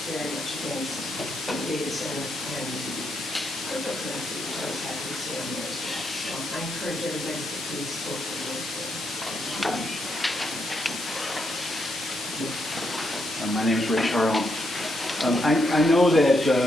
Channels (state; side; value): normal; both; correlation 0.79